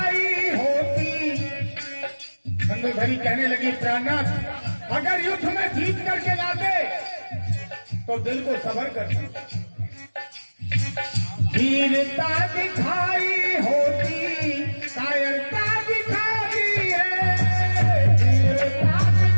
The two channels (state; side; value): inverted; both; correlation -1.00